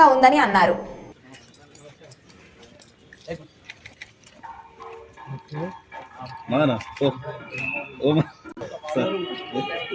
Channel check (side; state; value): both; identical; correlation 1.00